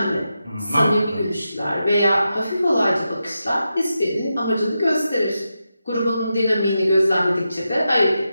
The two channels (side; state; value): both; inverted; correlation -0.88